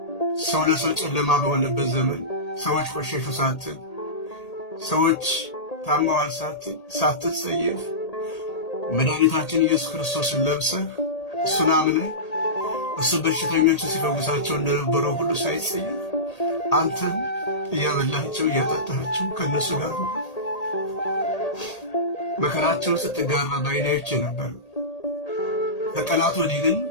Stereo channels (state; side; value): late; right; 1.8 ms